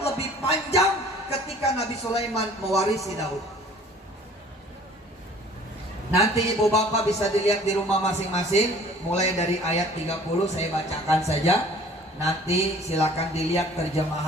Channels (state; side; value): normal; both; correlation 0.51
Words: panjang ketika Nabi Sulaiman mewarisi Daud. Nanti ibu bapak bisa dilihat di rumah masing-masing. Mulai dari ayat 30 saya bacakan saja. Nanti silakan dilihat